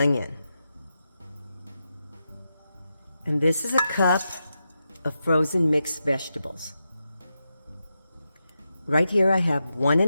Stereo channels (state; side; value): inverted; both; correlation -0.88